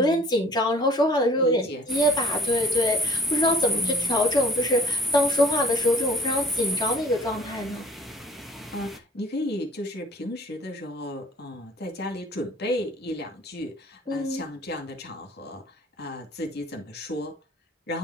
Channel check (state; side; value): normal; both; correlation 0.53